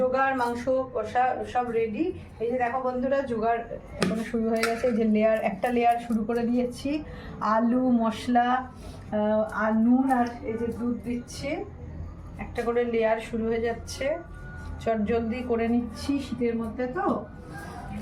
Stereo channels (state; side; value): identical; both; correlation 1.00